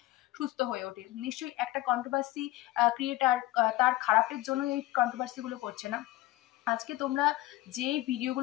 সুস্থ হয়ে ওঠে। নিশ্চয়ই একটা কন্ট্রোভার্সি ক্রিয়েটার তার খারাপের জন্য এই কন্ট্রোভার্সি গুলো করছে না। আজকে তোমরা যে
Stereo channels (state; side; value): quieter; right; 16.8 dB